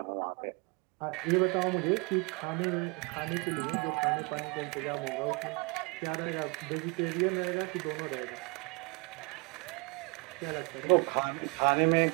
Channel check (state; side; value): quieter; left; 30.5 dB